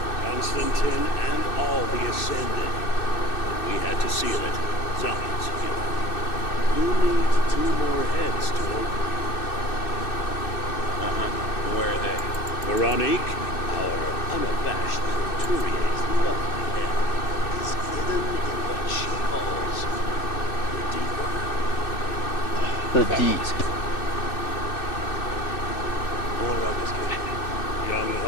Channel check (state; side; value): late; right; 2.6 ms